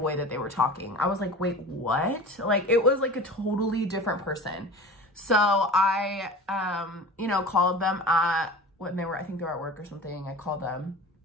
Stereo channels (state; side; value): normal; both; correlation 0.36